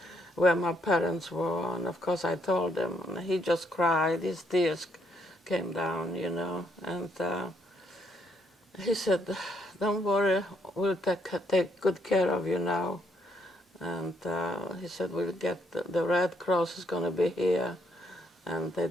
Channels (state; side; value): normal; both; correlation 0.73